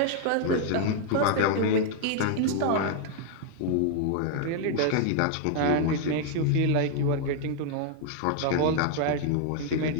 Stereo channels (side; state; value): both; different; correlation 0.00